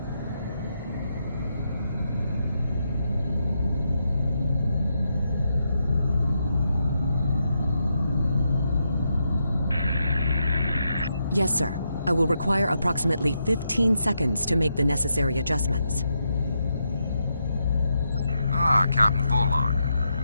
Yes, sir. I will require approximately 15 seconds to make the necessary adjustments. Ah, Captain Volog.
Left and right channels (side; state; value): both; inverted; correlation -0.82